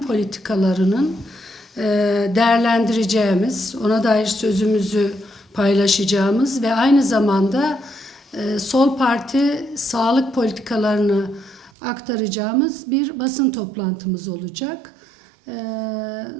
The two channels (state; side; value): drops out; left; at 11.7 s